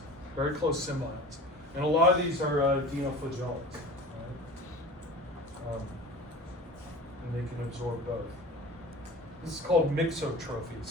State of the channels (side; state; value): both; normal; correlation 0.37